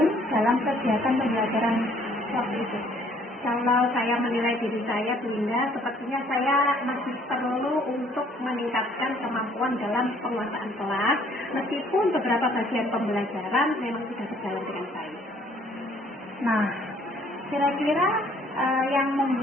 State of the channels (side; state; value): both; normal; correlation 0.61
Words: dalam kegiatan pembelajaran waktu itu? Kalau saya menilai diri saya Bunda, sepertinya saya masih perlu untuk meningkatkan kemampuan dalam penguasaan kelas, meskipun beberapa bagian pembelajaran memang sudah berjalan dengan baik. Nah, kira-kira yang